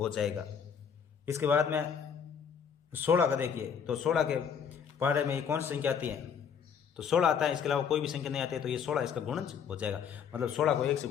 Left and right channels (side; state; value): right; quieter; 7.3 dB